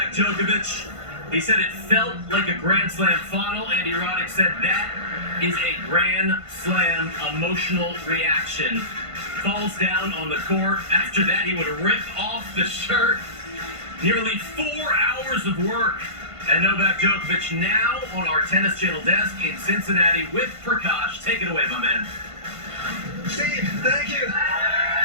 Djokovic. He said it felt like a Grand Slam final. Andy Roddick said that is a Grand Slam emotional reaction. Falls down on the court. After that, he would rip off the shirt. Nearly 4 hours of work. And Novak Djokovic now on our Tennis Channel desk in Cincinnati with Prakash. Take it away, my man. Steve, thank you.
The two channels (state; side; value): late; left; 1.5 ms